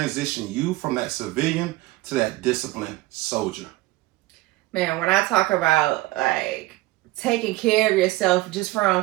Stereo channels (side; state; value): left; quieter; 18.8 dB